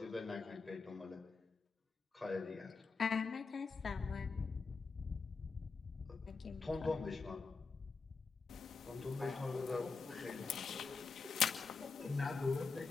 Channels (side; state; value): right; quieter; 4.7 dB